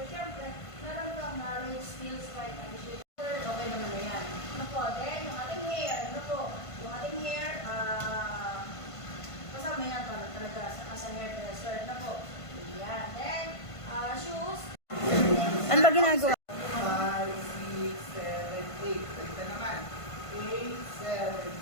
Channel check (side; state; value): right; late; 1.5 ms